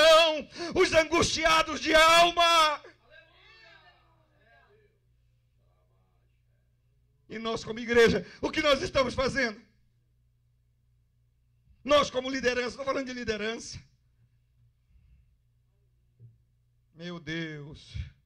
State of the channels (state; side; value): identical; both; correlation 1.00